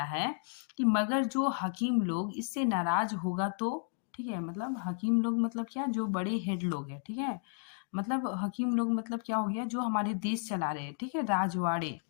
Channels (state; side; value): silent; right; 56 dB below the other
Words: है कि मगर जो हकीम लोग इससे नाराज होगा तो। ठीक है, मतलब हकीम लोग मतलब क्या, जो बड़े हेड लोग हैं। ठीक है, मतलब हकीम लोग मतलब क्या हो गया, जो हमारे देश चला रहे हैं। ठीक है, राजवाड़े।